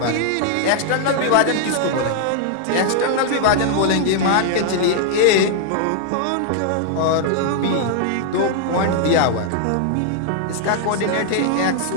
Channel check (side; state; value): both; different; correlation -0.01